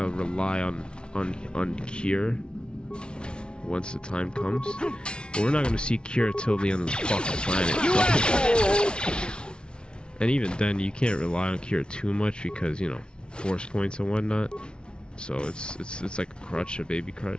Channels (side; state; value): right; late; 0.056 ms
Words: of rely on cure once the time comes. But we're not gonna see cure till the end of the fucking planet. And even then, you can't rely on cure too much because, you know, force points and whatnot. So it's like a crutch, a baby